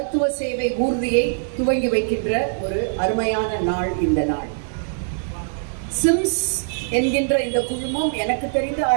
சேவை ஊர்தியை துவங்கி வைக்கின்ற ஒரு அருமையான நாள் இந்த நாள். சிம்ஸ் என்கின்ற இந்த குழுமம் எனக்கு தெரிந்து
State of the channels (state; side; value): silent; left; digital silence